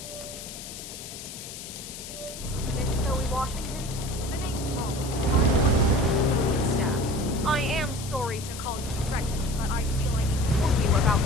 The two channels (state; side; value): noise; left; hiss, 11 dB below the sound